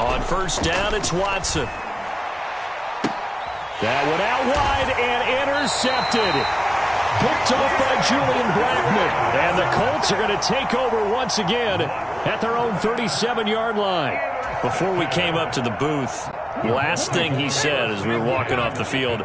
1st down, it's Watson. That one out wide and intercepted. Picked off by Julian Blackman. And the Colts are going to take over once again at their own 37-yard line. Before we came up to the booth, last thing he said as we were walking off the field,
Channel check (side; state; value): both; identical; correlation 1.00